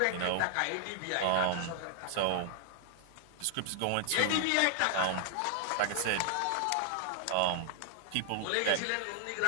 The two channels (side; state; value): both; different; correlation -0.01